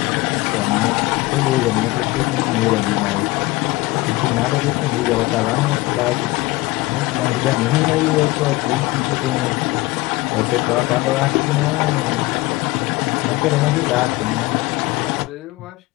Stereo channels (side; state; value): right; quieter; 20.5 dB